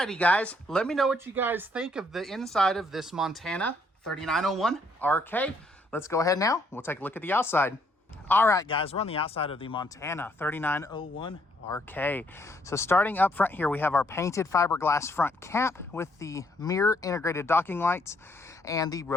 guys, let me know what you guys think of the inside of this Montana 3901 RK. Let's go ahead now. We'll take a look at the outside. All right, guys, we're on the outside of the Montana 3901 RK. So starting up front here, we have our painted fiberglass front cap with the mirror integrated docking lights and the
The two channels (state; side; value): normal; both; correlation 0.69